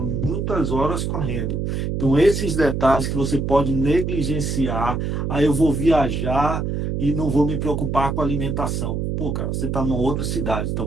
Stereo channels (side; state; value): right; noise; hum, 1 dB below the sound